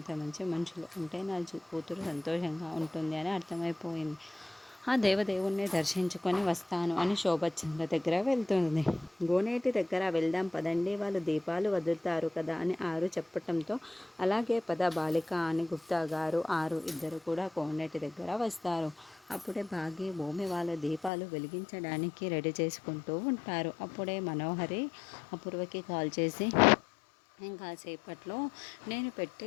మంచి మనుషులు ఉంటే నా కూతురు సంతోషంగా ఉంటుంది అని అర్థమైపోయింది. ఆ దేవదేవుణ్ణి దర్శించుకొని వస్తాను అని శోభచంద్ర దగ్గర వెళ్తుంది. గోనేటి దగ్గర వెళ్దాం పదండి, వాళ్ళు దీపాలు వదులుతారు కదా అని ఆరు చెప్పటంతో, అలాగే పద బాలిక అని గుప్తా గారు, ఆరు ఇద్దరు కూడా కోనేటి దగ్గర వస్తారు. అప్పుడే భాగ్య భూమి వాళ్ళ దీపాలు వెలిగించడానికి రెడీ చేసుకుంటూ ఉంటారు. అప్పుడే మనోహరి అపూర్వకి కాల్ చేసి, ఇంకా సేపట్లో నేను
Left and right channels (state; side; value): drops out; right; at 21.1 s